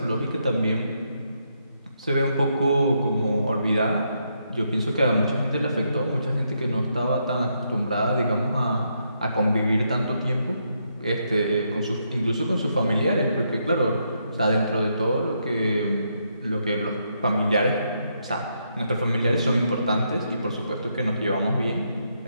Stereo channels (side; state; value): both; inverted; correlation -0.78